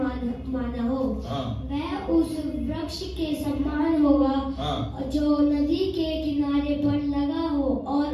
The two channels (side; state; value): both; identical; correlation 1.00